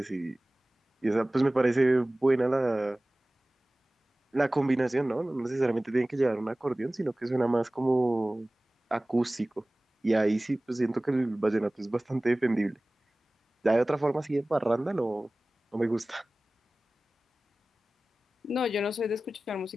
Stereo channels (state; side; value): normal; both; correlation 0.98